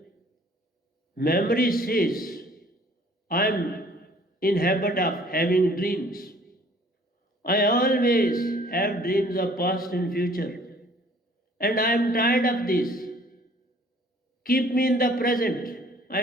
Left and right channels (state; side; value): normal; both; correlation 0.55